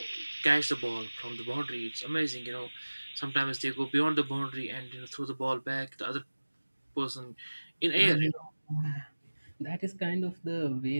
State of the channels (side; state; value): both; inverted; correlation -1.00